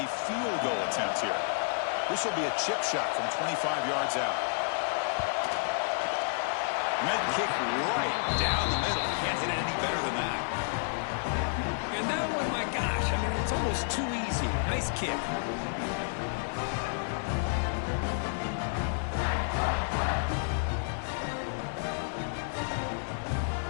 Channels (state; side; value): silent; right; digital silence